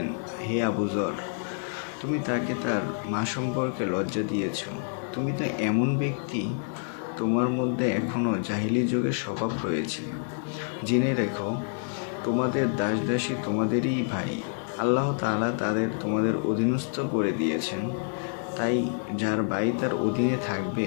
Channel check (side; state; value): right; silent; 60 dB below the other